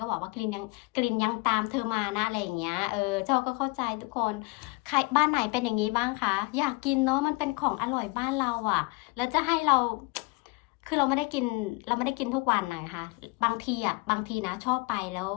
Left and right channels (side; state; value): right; quieter; 26.3 dB